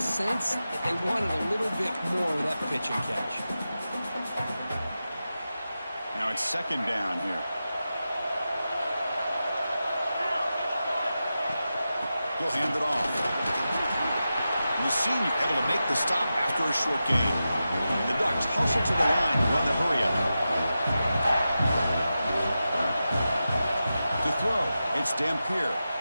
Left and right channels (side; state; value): both; inverted; correlation -0.92